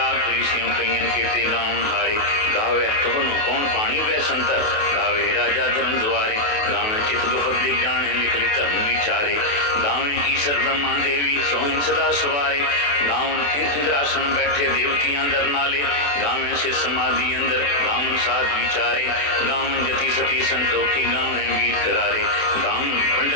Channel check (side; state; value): right; late; 28 ms